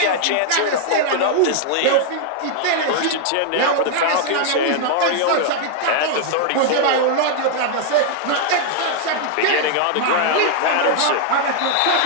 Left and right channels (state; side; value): different; both; correlation 0.00